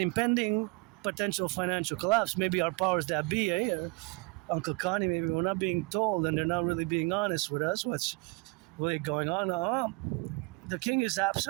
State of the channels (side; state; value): left; quieter; 28.3 dB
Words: potential financial collapse, maybe our powers that be, eh? Uncle Connie, maybe we're not being told and they're not really being honest with us what's really going on. The king is